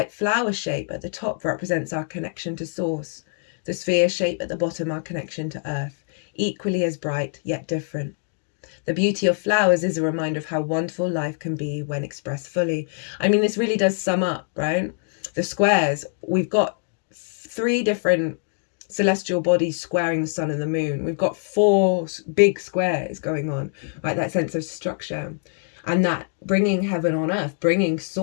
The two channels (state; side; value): silent; right; 58 dB below the other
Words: flower shape at the top represents our connection to source. The sphere shape at the bottom, our connection to earth, equally as bright yet different. The beauty of flowers is a reminder of how wonderful life can be when expressed fully. This really does sum up, right? The squares, we've got 3 different celestial bodies squaring the sun and the moon. We've got 4 big squares going on, right? That sense of structure. And that bringing heaven on earth, bringing